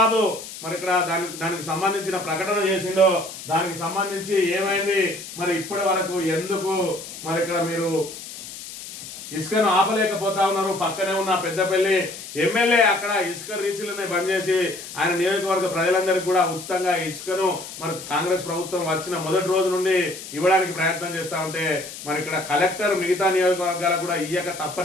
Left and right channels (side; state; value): left; noise; hiss, 12 dB below the sound